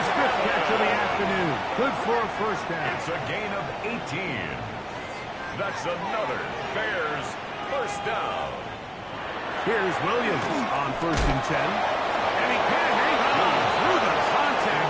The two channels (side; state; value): both; identical; correlation 1.00